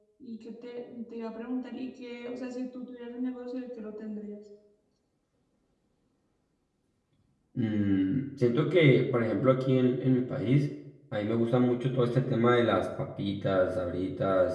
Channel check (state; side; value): identical; both; correlation 1.00